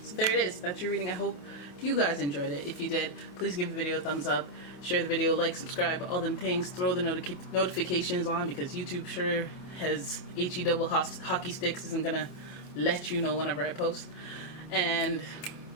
So there it is. That's your reading. I hope you guys enjoyed it. If you did, please give the video a thumbs up, share the video, like, subscribe, all them things. Throw the notifications on, because YouTube sure has HE double hockey sticks, isn't gonna let you know whenever I post. And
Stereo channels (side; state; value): right; late; 28 ms